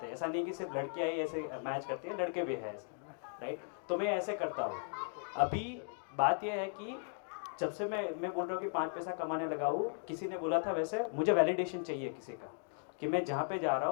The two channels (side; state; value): right; silent; 53 dB below the other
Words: हैं। ऐसा नहीं कि सिर्फ लड़कियाँ ही ऐसे मैच करती हैं, लड़के भी हैं ऐसे, राइट? तो मैं ऐसे करता हूँ। अभी बात यह है कि जब से मैं बोल रहा हूँ कि 5 पैसा कमाने लगा हूँ, किसी ने बोला था वैसे मुझे वैलिडेशन चाहिए किसी का, कि मैं जहाँ पे जा रहा